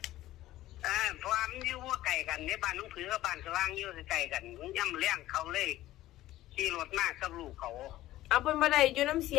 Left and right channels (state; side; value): quieter; right; 15.3 dB